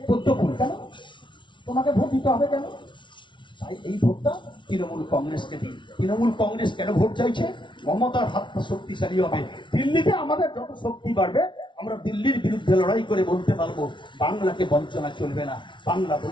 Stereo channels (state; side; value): late; right; 0.24 ms